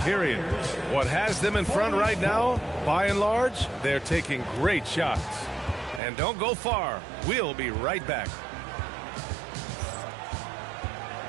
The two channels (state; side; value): drops out; left; at 6.0 s